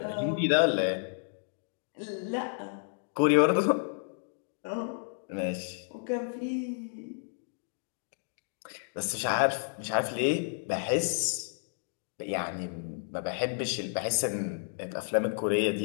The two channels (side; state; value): right; silent; digital silence